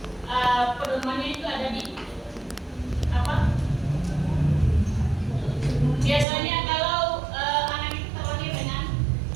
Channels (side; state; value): left; drops out; at 6.2 s